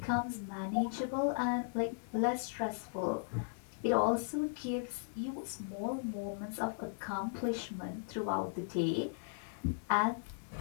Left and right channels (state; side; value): silent; right; digital silence